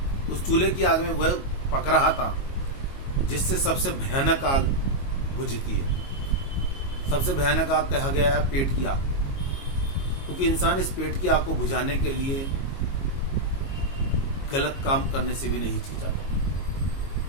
उस चूल्हे की आग में वह पक रहा था जिससे सबसे भयानक आग बुझती है। सबसे भयानक आग कहा गया है पेट की आग, क्योंकि इंसान इस पेट की आग को बुझाने के लिए गलत काम करने से भी नहीं हिचकिचाता।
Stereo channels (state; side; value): late; right; 22 ms